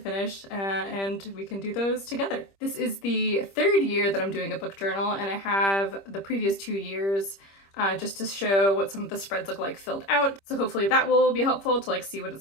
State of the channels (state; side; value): late; right; 25 ms